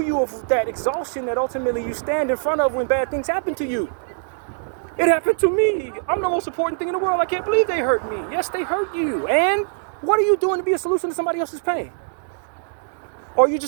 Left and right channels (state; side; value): silent; left; digital silence